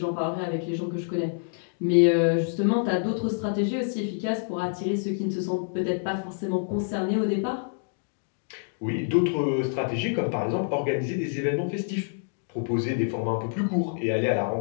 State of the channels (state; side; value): silent; right; digital silence